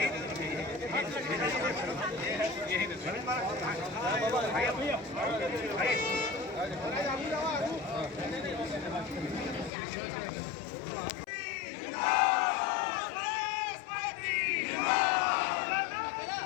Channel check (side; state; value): right; drops out; at 9.7 s